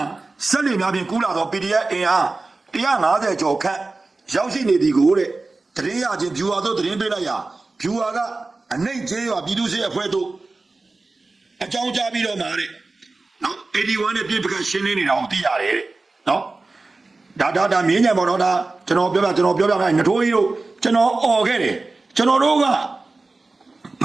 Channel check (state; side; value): quieter; left; 3.5 dB